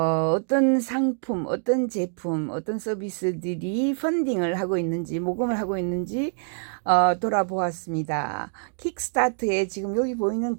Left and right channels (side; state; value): left; silent; digital silence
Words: 상품, 어떤 제품, 어떤 서비스들이 펀딩을 하고 있는지, 모금을 하고 있는지 돌아보았습니다. 킥스타터에 지금 여기 보이는